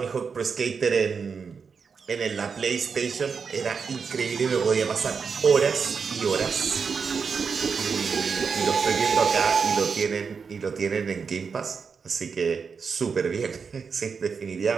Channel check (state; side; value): quieter; left; 5.7 dB